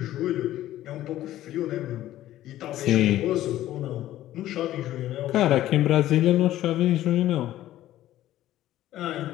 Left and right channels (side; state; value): right; quieter; 13.8 dB